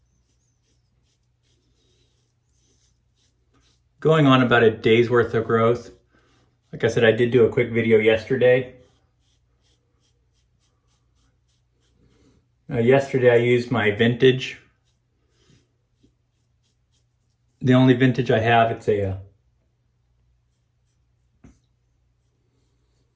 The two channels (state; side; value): identical; both; correlation 1.00